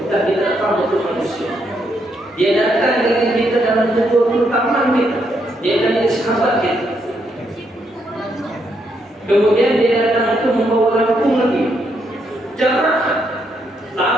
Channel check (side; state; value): both; normal; correlation 0.77